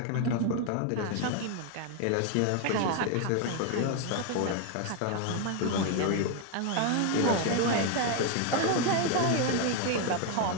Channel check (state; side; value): different; both; correlation 0.01